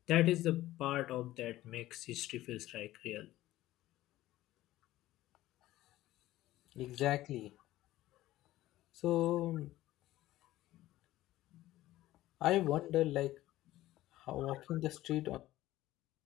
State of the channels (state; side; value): quieter; right; 15.6 dB